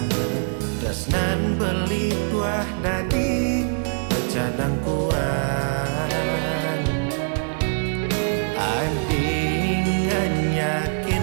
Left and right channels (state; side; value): silent; left; 63 dB below the other